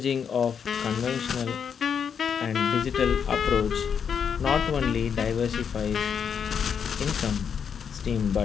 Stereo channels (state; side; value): quieter; right; 7.2 dB